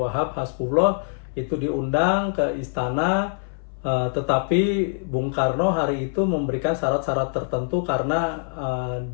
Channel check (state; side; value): silent; right; 59 dB below the other